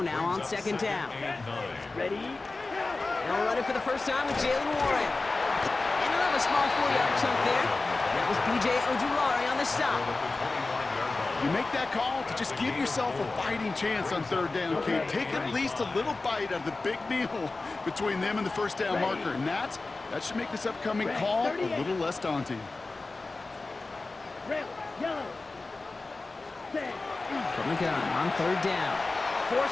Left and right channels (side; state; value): right; quieter; 3.5 dB